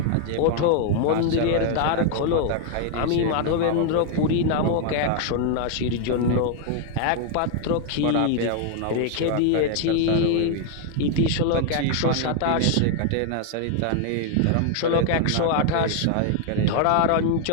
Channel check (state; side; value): different; both; correlation 0.00